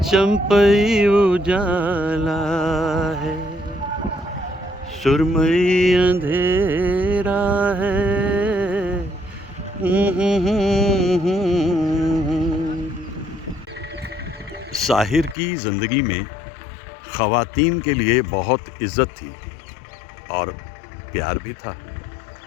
चंपई उजाला है, सुरमई अंधेरा है। साहिर की ज़िंदगी में ख़वातीन के लिए बहुत इज़्ज़त थी और प्यार भी था।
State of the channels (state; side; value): drops out; right; at 15.4 s